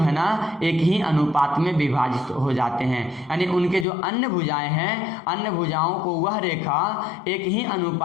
ना एक ही अनुपात में विभाजित हो जाते हैं। यानी उनके जो अन्य भुजाएं हैं, अन्य भुजाओं को वह रेखा एक ही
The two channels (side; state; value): right; drops out; at 3.9 s